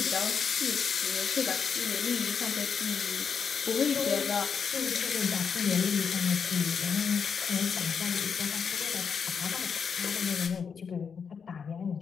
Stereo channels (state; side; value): quieter; right; 6.4 dB